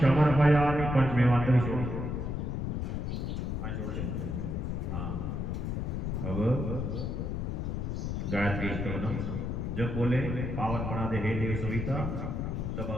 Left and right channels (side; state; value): left; noise; rumble, 2 dB below the sound